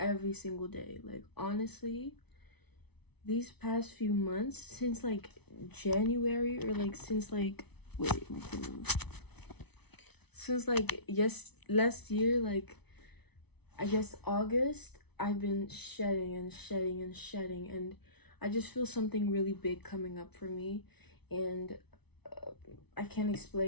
single day. Like, honestly, these past few months, since, like, January, or, like, since, like, wait, my phone. Since, like, last year, like, I guess August, I've been shedding and shedding and shedding, and I just feel something really big coming up for me, and I can't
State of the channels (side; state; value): right; late; 0.99 ms